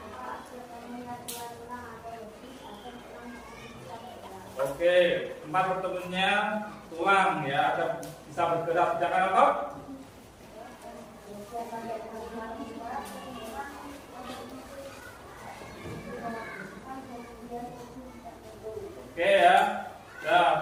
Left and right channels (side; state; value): both; identical; correlation 1.00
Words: Oke, tempat bertemunya tulang ya, ada bisa bergerak sedangkan otot. Oke ya,